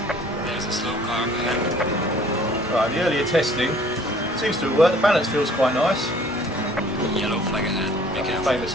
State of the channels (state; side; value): normal; both; correlation 0.54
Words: Right, the earlier testing seems to have worked. The balance feels quite nice. Yellow flag ahead. Be careful. Famous